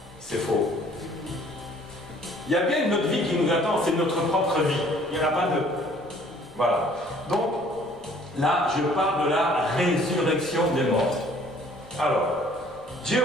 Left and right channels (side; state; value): both; normal; correlation 0.57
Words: C'est faux. Il y a bien une autre vie qui nous attend, c'est notre propre vie. Il n'y en a pas deux. Voilà. Donc, là, je parle de la résurrection des morts. Alors, Dieu,